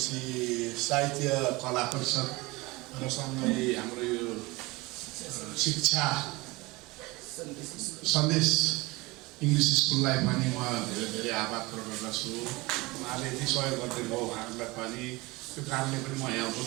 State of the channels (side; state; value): left; quieter; 22.9 dB